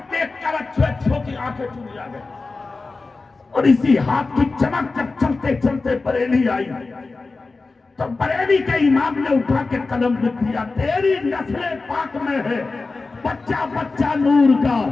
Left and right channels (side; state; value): right; quieter; 3.8 dB